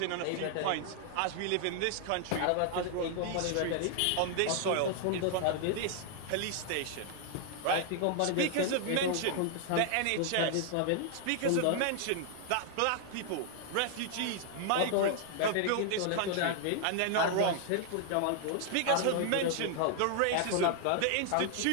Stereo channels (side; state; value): both; different; correlation 0.00